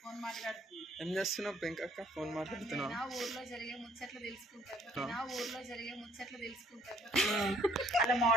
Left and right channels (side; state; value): both; normal; correlation 0.62